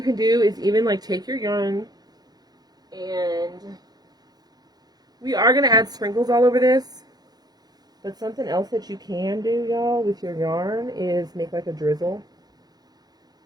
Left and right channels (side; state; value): left; late; 0.19 ms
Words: can do is even like take your yarn and we are going to add sprinkles all over this. But something else that you can do, y'all, with your yarn is make like a drizzle.